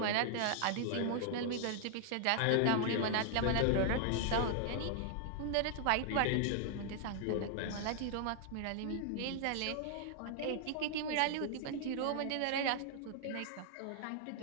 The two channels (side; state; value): both; different; correlation 0.00